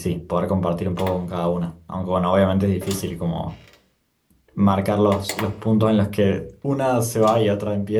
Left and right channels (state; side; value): identical; both; correlation 1.00